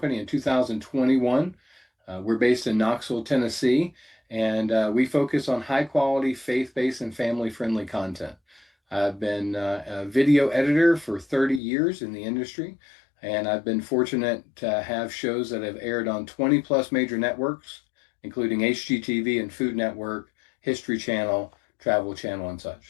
in 2021. We're based in Knoxville, Tennessee, and we focus on high quality, faith-based and family-friendly content. I've been a video editor for 30 years in the industry. And I've been fortunate to have shows that have aired on 20 plus major networks, including HGTV and Food Network, History Channel, Travel Channel, and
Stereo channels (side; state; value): right; drops out; at 11.6 s